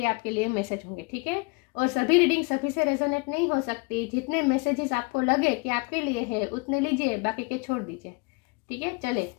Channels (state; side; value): quieter; right; 29.0 dB